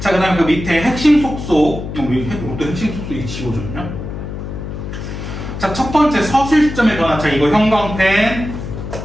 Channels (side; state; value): left; noise; hum, 7 dB below the sound